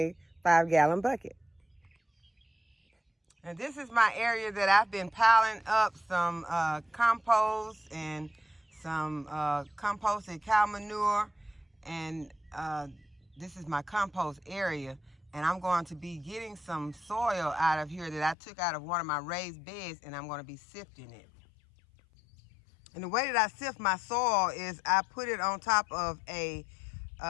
5-gallon bucket. And this is my area that I've been piling up some compost and some composted cow manure, and this is my compost area, and I'm going to be getting some soil out of here that I took out of one of my raised beds, and I'm going to be sifting it. And the way that I sift my soil is I put it on top of a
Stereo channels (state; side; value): drops out; right; at 18.4 s